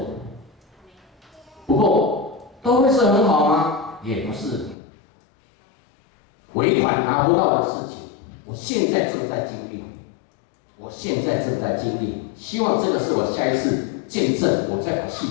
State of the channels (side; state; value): right; drops out; at 4.8 s